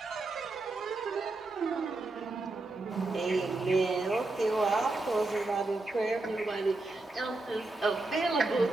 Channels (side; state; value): left; quieter; 3.1 dB